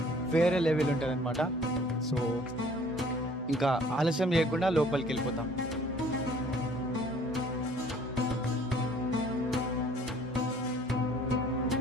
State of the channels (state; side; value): normal; both; correlation 0.55